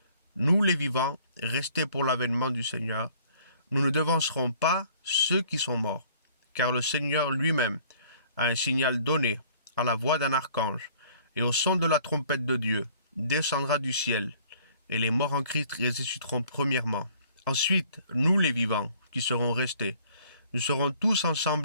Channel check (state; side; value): inverted; both; correlation -0.57